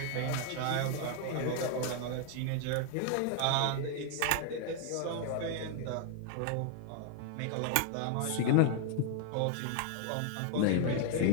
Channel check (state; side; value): different; both; correlation 0.00